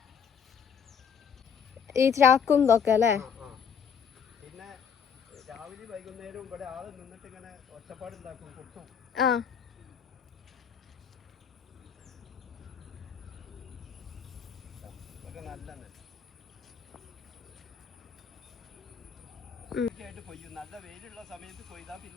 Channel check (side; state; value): right; quieter; 7.1 dB